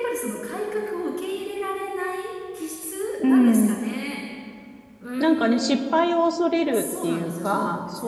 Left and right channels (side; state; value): both; identical; correlation 1.00